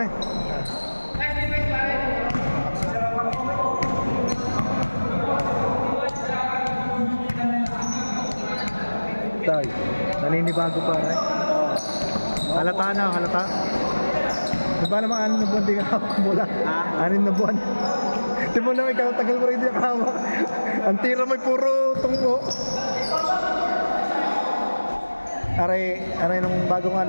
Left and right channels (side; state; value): both; inverted; correlation -1.00